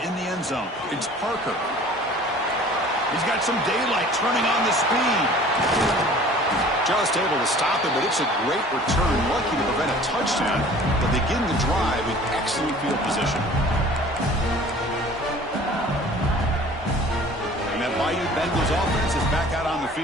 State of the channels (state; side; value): normal; both; correlation 0.48